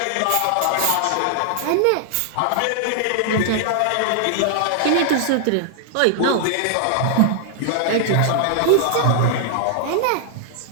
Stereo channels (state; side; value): different; both; correlation 0.00